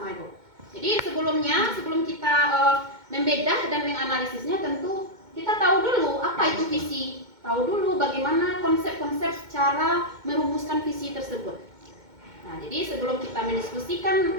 itu. Jadi sebelum kita membedah dan menganalisisnya, tentu kita tahu dulu apa itu visi, tahu dulu bagaimana konsep-konsep cara merumuskan visi tersebut. Nah, jadi sebelum kita mendiskusikan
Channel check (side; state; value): left; late; 2.2 ms